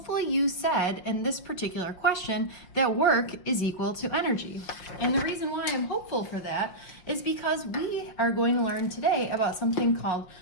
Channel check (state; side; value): late; right; 5.7 ms